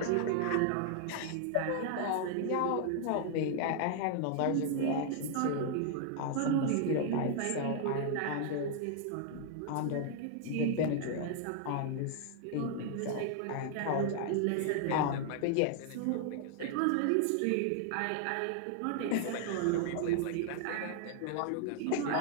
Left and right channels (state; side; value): different; both; correlation -0.01